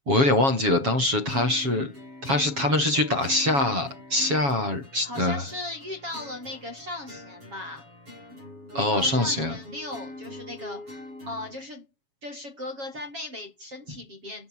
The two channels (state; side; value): late; left; 7.3 ms